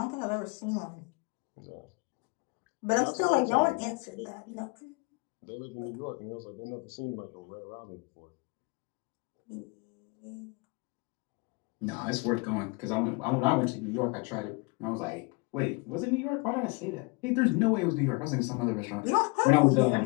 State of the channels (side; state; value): right; quieter; 28.8 dB